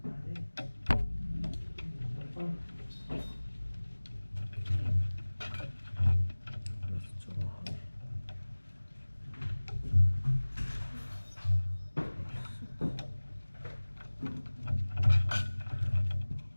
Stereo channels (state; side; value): inverted; both; correlation -1.00